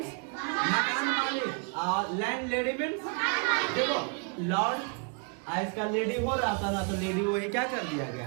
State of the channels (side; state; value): left; quieter; 35.8 dB